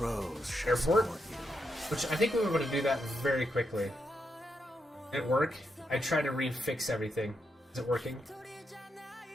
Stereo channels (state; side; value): normal; both; correlation 0.82